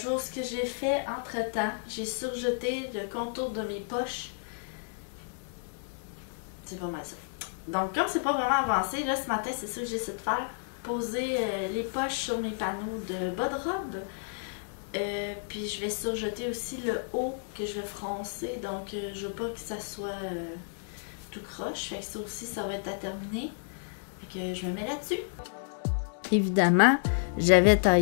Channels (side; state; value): right; silent; digital silence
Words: ce que j'ai fait entre-temps, j'ai surjeté le contour de mes poches. C'est pas mal ça. Donc comme c'est pas vraiment avancé, là ce matin, c'est ça que j'essaie de faire. Poser les poches sur mes panneaux de bas de robe. Puis je vais surjeter aussi le haut que je vais froncer. Donc je veux pas que ça soit tout croche. Fait que ça aussi, ça va être à terminer. Fait que je me mets là-dessus. Évidemment, j'avais